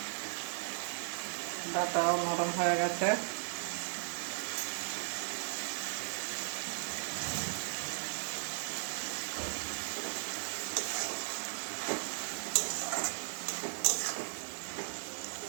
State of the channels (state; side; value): silent; left; digital silence